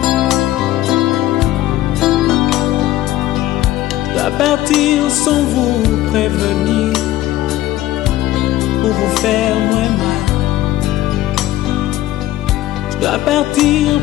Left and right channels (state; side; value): quieter; right; 15.1 dB